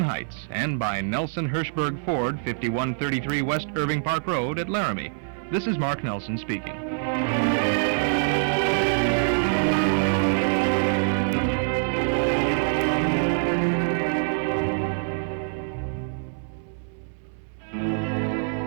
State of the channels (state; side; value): silent; left; 62 dB below the other